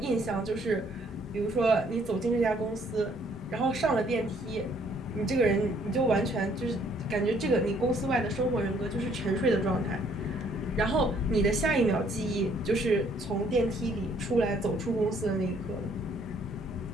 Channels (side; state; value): both; normal; correlation 0.64